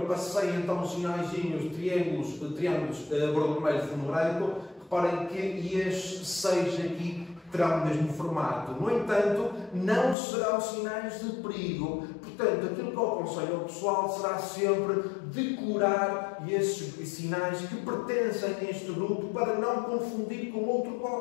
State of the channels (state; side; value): drops out; right; at 10.2 s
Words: passei então os sinaizinhos, triângulos vermelho, fundo branco. Reparem que estes 6 aqui terão o mesmo formato. No entanto, não serão sinais de perigo. Portanto, aquilo que eu aconselho ao pessoal será sempre decorar esses sinais que pertencem a este grupo para não confundir com outro